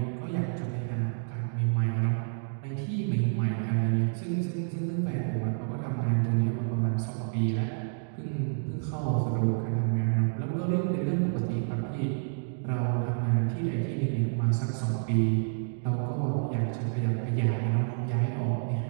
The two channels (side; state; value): left; silent; digital silence